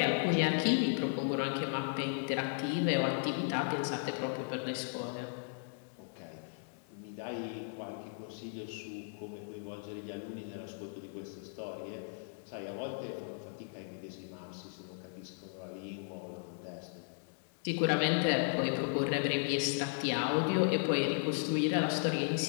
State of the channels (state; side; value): silent; right; digital silence